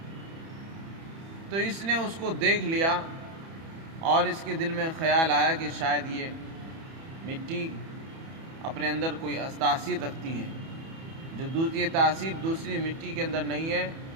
تو اس نے اس کو دیکھ لیا اور اس کے دل میں خیال آیا کہ شاید یہ مٹی اپنے اندر کوئی تاثیر رکھتی ہے، جو یہ تاثیر دوسری مٹی کے اندر نہیں ہے،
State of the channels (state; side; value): late; left; 31 ms